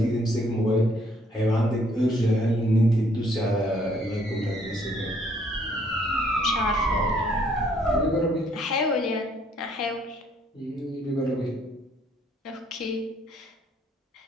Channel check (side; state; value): both; normal; correlation 0.65